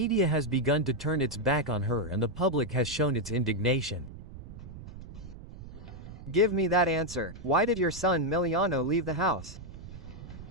has begun to turn its back on her, and the public has shown its indignation. Give me that answer. Why did your son Miliano leave the house?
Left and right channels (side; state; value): right; noise; rumble, 14 dB below the sound